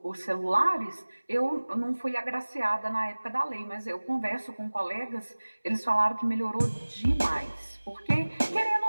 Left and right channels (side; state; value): both; inverted; correlation -1.00